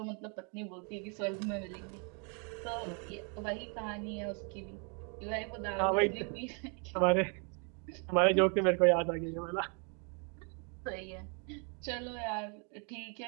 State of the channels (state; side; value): quieter; left; 37.4 dB